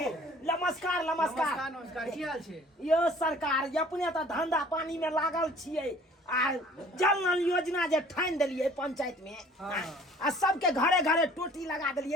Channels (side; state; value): both; normal; correlation 0.52